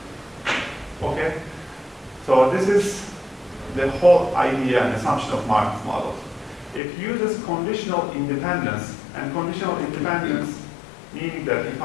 Okay? So this is the whole idea and assumption of Markov models. It uses conditional independence, and conditional independence meaning that if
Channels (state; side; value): drops out; right; at 6.8 s